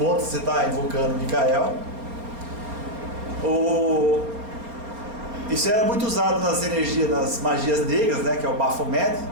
você está invocando Micael. Isso era muito usado nas energias, nas magias negras, né? Que é o Baphomet,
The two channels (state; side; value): late; left; 4.3 ms